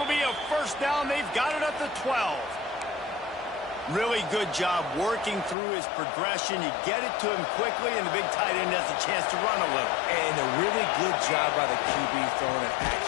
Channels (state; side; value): drops out; right; at 5.6 s